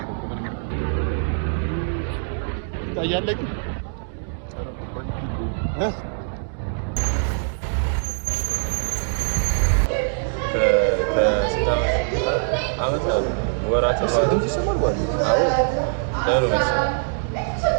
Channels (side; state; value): left; silent; digital silence